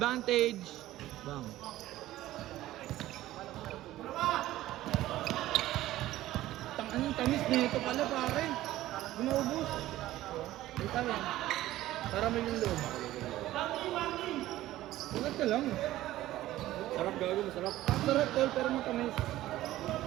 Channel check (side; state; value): left; quieter; 15.2 dB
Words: Bang. Anong tamis nito pala pare? Ginaubos. Ito yan. Para may yung loob. Sarap ka lang. sarap gago, masarap. Sarap tol, pero matamis.